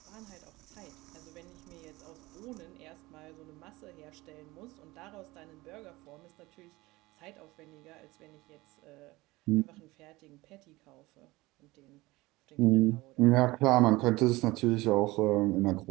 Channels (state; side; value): quieter; left; 20.6 dB